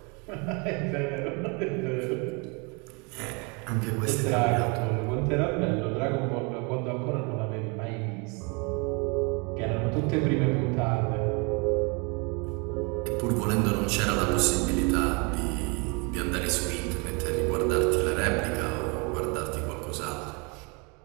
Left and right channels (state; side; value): quieter; left; 31.6 dB